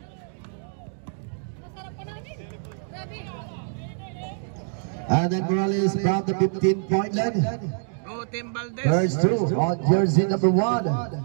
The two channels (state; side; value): silent; left; digital silence